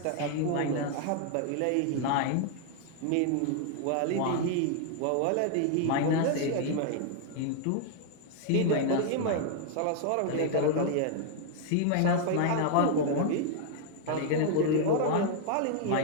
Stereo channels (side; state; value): both; different; correlation 0.00